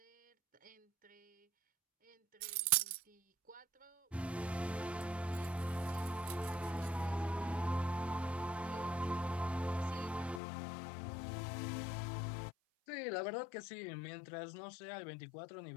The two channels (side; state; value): right; drops out; at 10.4 s